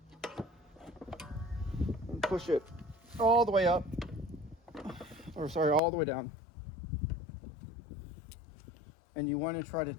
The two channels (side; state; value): right; drops out; at 5.8 s